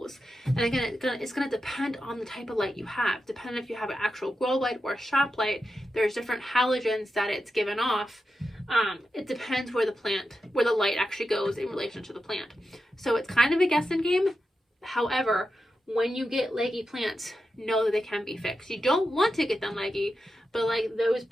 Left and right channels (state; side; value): normal; both; correlation 0.89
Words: And again, it's going to depend on the type of light you have. Depending if you have an actual grow light or a shop light, there's different halogens that it's given off. It depends where the light actually goes in relation to the plant. So it's kind of a guessing game. However, when you get leggy plants, know that they can be fixed. You don't want to get them leggy, but like those